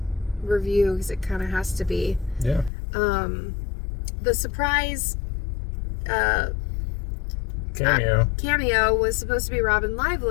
review because it kind of has to be. Yeah. The surprise cameo was supposed to be Robin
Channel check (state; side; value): drops out; right; at 2.7 s